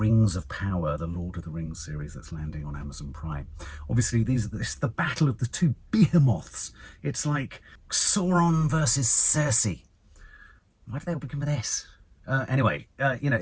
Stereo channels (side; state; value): both; identical; correlation 1.00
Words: of Power, the Lord of the Rings series that's landing on Amazon Prime. Obviously, this is the battle of the two behemoths. It's like Sauron versus Cersei. Why do they all begin with S? Anyway, you know,